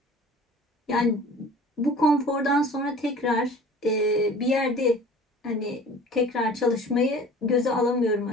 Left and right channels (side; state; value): both; normal; correlation 0.44